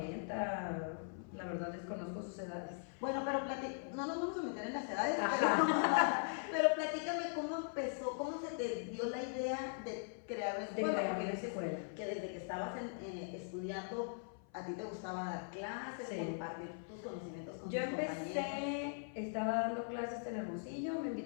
la verdad desconozco sus edades. Bueno, pero no nos vamos a meter en las edades, pero platícame cómo empezó, cómo se te dio la idea de crear la escuela. Porque dices que desde que estabas estudiando, a ti te gustaba dar clases, compartir tus conocimientos con tus compañeros. Estaba dando clases en Hermosillo, me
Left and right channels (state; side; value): silent; right; 51 dB below the other